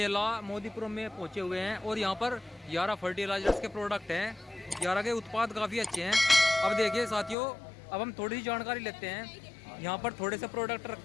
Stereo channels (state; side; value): drops out; right; at 7.4 s